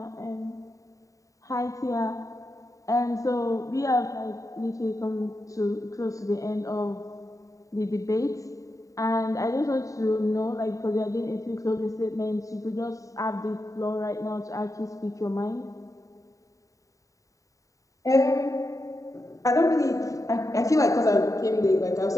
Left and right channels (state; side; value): late; right; 0.16 ms